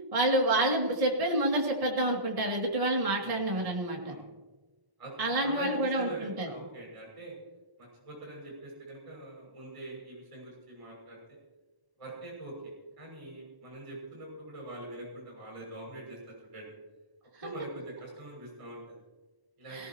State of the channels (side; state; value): left; late; 1.0 ms